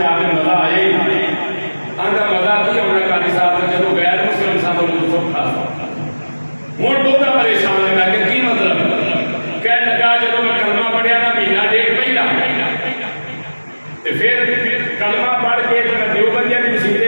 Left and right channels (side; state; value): both; inverted; correlation -1.00